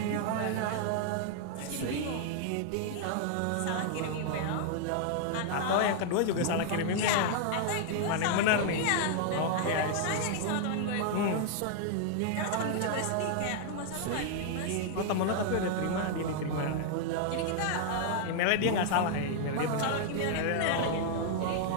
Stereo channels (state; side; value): different; both; correlation 0.00